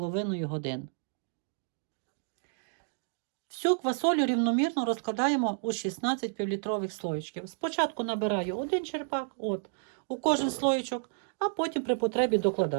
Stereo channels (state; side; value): silent; left; digital silence